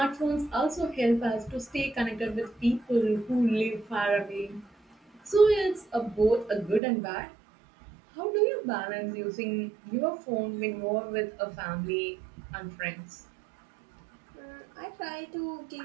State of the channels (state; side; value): drops out; left; at 6.8 s